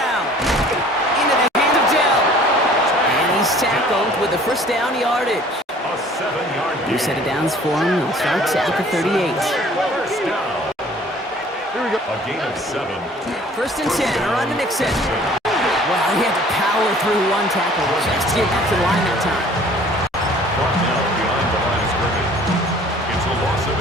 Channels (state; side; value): normal; both; correlation 0.52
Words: Into the hands of Dell. And he's tackled with the first down yardage. A 7-yard New set of downs for him. He'll start at the 38. First down. Here we go. A gain of 7. First and 10. Around to Nixon. Well, he had to power through one tackle just to get back to the line that time. Brought down behind the line of scrimmage. It's a loss of